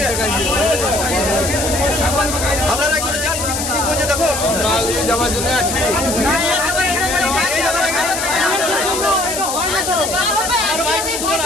আপনারা একটু যান, কি করছে দেখো।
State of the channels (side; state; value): left; noise; hiss, 4 dB below the sound